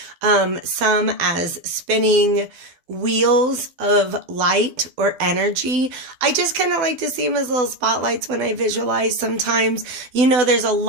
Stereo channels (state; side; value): late; left; 12 ms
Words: some as spinning wheels of light or energy. I just kind of like to see them as little spotlights when I visualize sometimes. You know, there's a